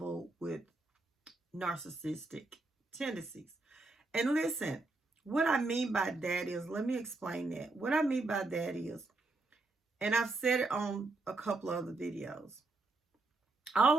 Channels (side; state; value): left; quieter; 3.3 dB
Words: with narcissistic tendencies. And listen, what I mean by that is, let me explain that. What I mean by that is, and I've said it on a couple of other videos, all